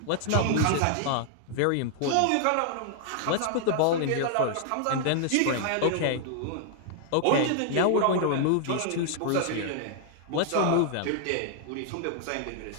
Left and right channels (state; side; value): different; both; correlation 0.00